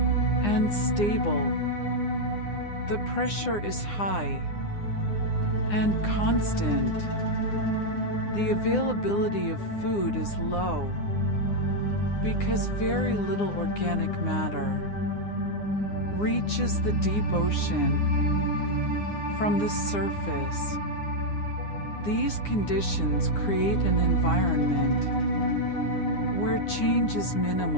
and stable. The pressure is high and constant. The availability of food is low because very little organic matter reaches the deep ocean from the surface. These conditions create an environment where change is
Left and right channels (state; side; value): late; right; 9.8 ms